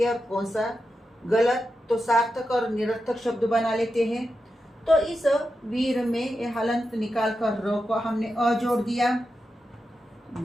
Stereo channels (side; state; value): both; normal; correlation 0.89